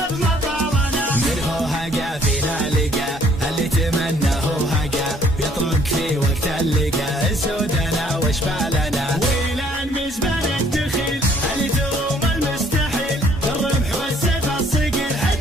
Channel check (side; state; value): both; normal; correlation 0.62